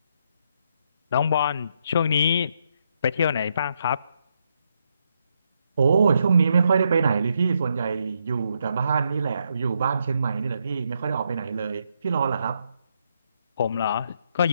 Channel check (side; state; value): both; inverted; correlation -0.78